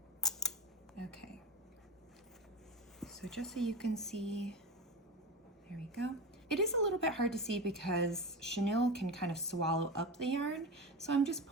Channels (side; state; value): both; normal; correlation 0.23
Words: Okay. So just so you can see, there we go. It is a little bit hard to see because chenille can kind of swallow up the yarn, so I'm just